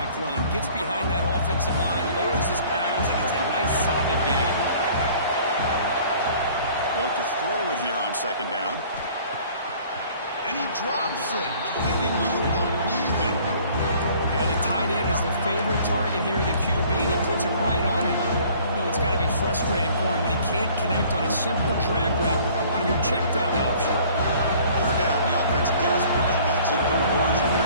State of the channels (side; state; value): both; inverted; correlation -0.53